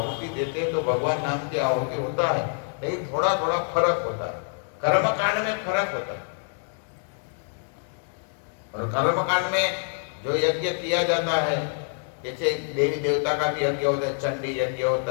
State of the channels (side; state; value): right; silent; 59 dB below the other